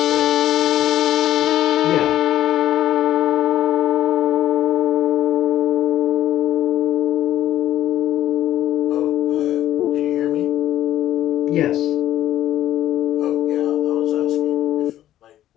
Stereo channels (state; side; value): quieter; right; 12.7 dB